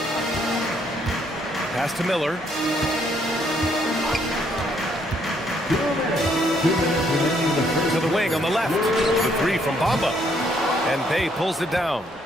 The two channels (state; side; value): normal; both; correlation 0.70